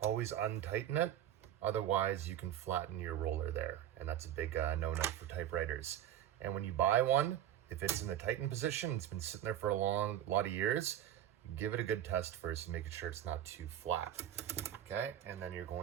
always untighten it. Otherwise you can flatten your roller there. And that's a big no-no for typewriters. And when you buy one, if it's in the tightened position, it's been sitting there for a lot of years, give it a good test first and make sure it's not too flat. Okay, and then you're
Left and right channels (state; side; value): quieter; left; 11.3 dB